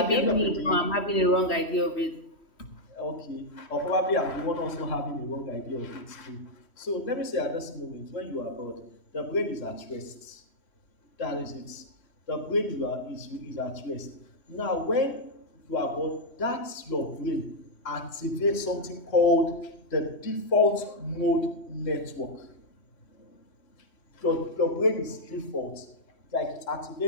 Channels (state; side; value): late; right; 3.1 ms